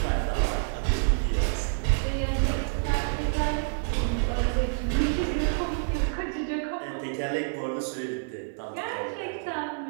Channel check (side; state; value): left; silent; 55 dB below the other